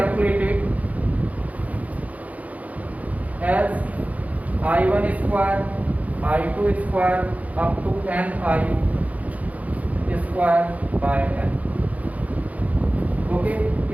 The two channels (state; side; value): late; left; 0.072 ms